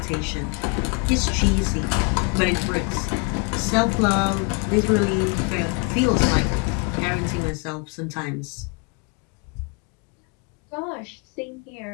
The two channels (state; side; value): quieter; right; 32.5 dB